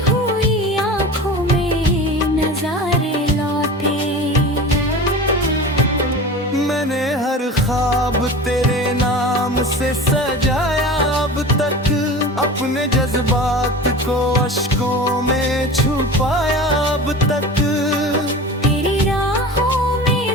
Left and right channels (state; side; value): normal; both; correlation 0.34